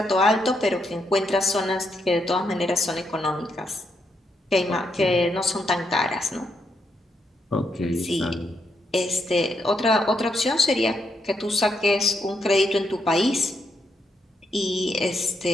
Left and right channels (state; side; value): normal; both; correlation 0.79